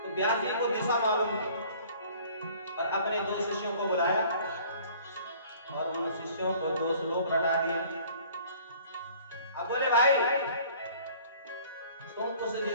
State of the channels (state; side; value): inverted; both; correlation -0.52